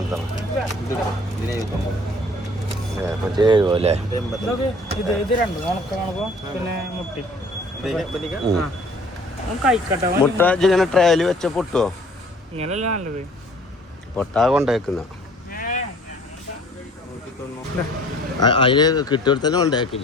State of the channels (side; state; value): both; normal; correlation 0.53